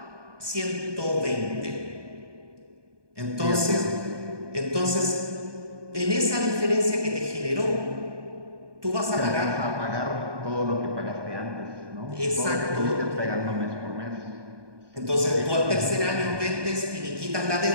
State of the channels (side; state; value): left; late; 1.2 ms